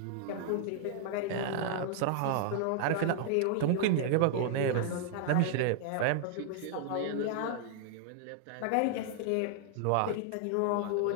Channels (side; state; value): both; different; correlation -0.01